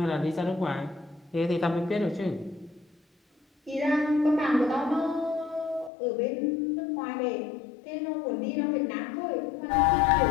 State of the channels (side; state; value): right; drops out; at 5.9 s